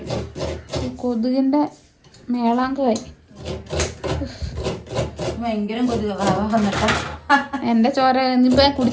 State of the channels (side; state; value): both; identical; correlation 1.00